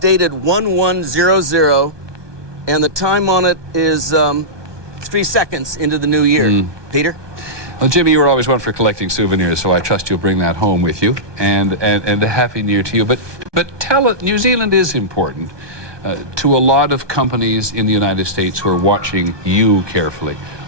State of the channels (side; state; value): left; late; 1.2 ms